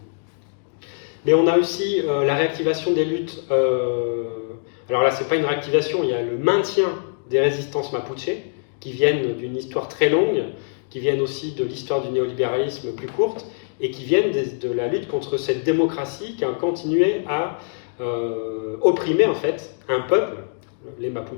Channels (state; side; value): silent; right; digital silence